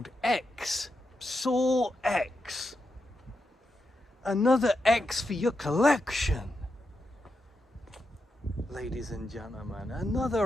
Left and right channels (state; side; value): normal; both; correlation 0.86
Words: X, Saw X. Another X for your collection. Ladies and gentlemen,